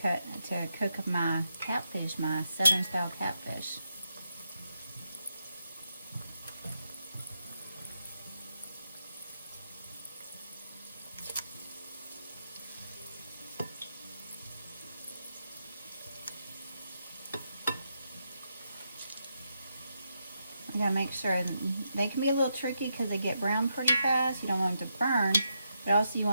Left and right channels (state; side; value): inverted; both; correlation -0.83